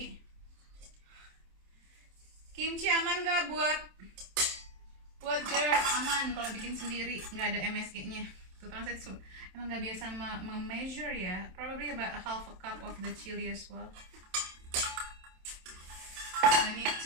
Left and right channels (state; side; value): late; left; 27 ms